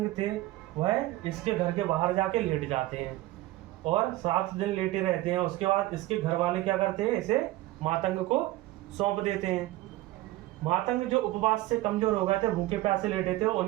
थे वह इसके घर के बाहर जाके लेट जाते हैं और 7 दिन लेटे रहते हैं। उसके बाद इसके घर वाले क्या करते हैं? इसे मातंग को सौंप देते हैं। मातंग जो उपवास से कमजोर हो गए थे, भूखे प्यासे लेटे थे,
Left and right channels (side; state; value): left; quieter; 17.4 dB